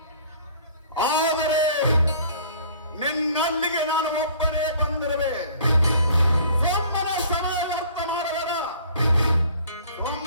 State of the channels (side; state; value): both; inverted; correlation -0.52